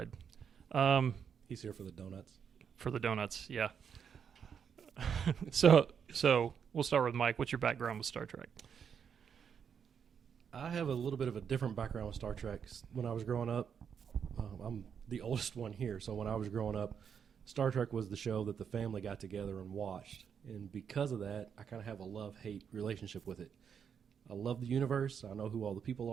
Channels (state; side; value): quieter; left; 7.3 dB